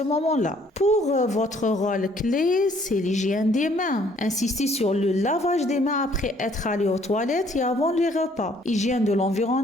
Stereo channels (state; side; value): normal; both; correlation 0.62